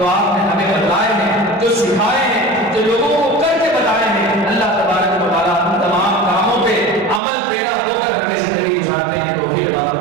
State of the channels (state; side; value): drops out; left; at 7.2 s